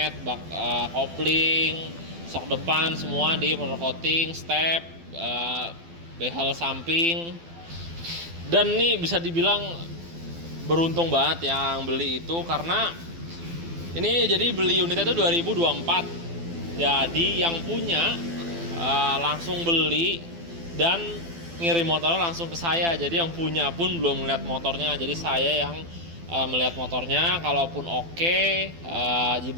bak kopling, sok depan semua di powder coating, step, behel samping. Dan ini bisa dibilang beruntung banget yang beli itu, karena ini jadi beli unitnya itu 2024. Jadi yang punya langsung beli dan ngirim motornya langsung ke saya. Jadi yang punya pun belum melihat motornya. Jadi saya yang melihat motornya. Kalaupun oke,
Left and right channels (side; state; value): left; late; 12 ms